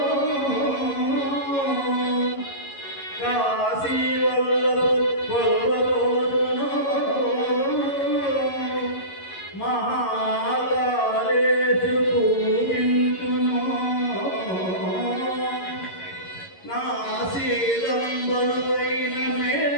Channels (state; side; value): late; right; 11 ms